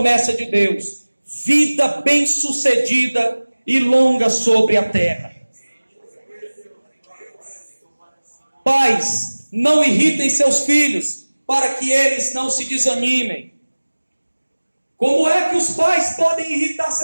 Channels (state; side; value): inverted; both; correlation -1.00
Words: de Deus: vida bem-sucedida e longa sobre a terra. Pais, não irritem seus filhos, para que eles não se desanimem. Como é que os pais podem irritar